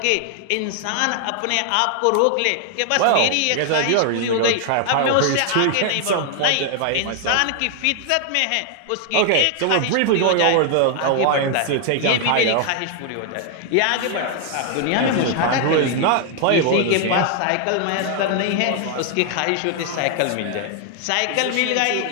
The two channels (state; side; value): different; both; correlation 0.00